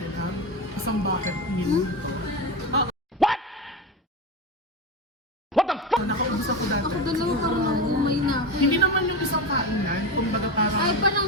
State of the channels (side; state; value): both; normal; correlation 0.20